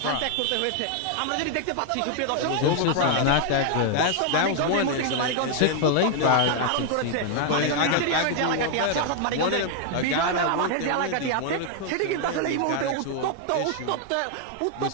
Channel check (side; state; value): both; different; correlation 0.00